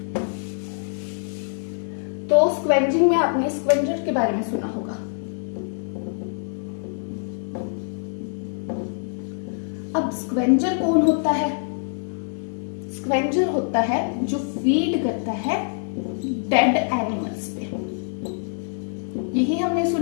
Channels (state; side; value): silent; right; 62 dB below the other